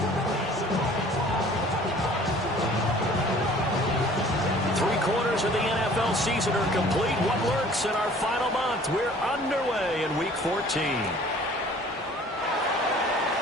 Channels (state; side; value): normal; both; correlation 0.51